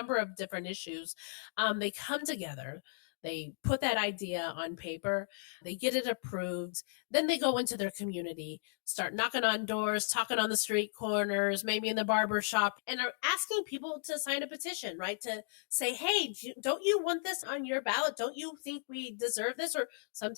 of different issues. They come together. They put that idea on paper, they get it approved, then they go into their community, start knocking on doors, talking on the street corners, maybe in the barber shop, and are asking people to sign a petition, right? To say, hey, don't you want this on your ballot? Don't you think we deserve this? Or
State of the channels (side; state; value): right; silent; digital silence